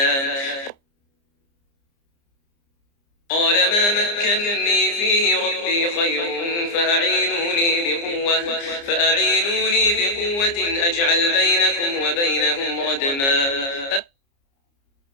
قال ما مكنني فيه ربي خير فأعينوني بقوة أجعل بينكم وبينهم ردما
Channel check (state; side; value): late; right; 29 ms